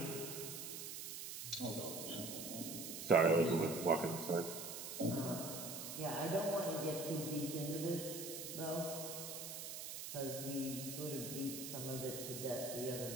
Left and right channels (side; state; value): right; noise; hiss, 7 dB below the sound